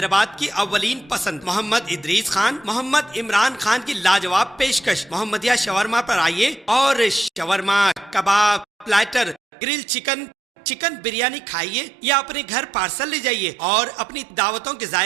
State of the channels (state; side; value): drops out; left; at 9.4 s